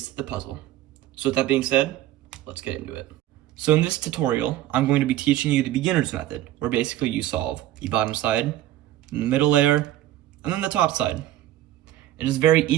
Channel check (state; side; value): quieter; left; 13.8 dB